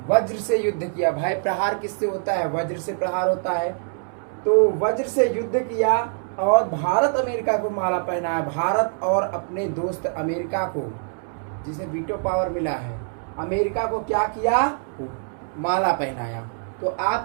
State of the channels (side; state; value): left; silent; digital silence